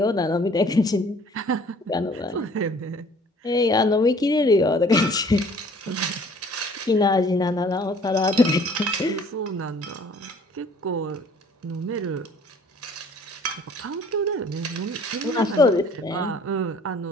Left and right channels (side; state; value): both; normal; correlation 0.54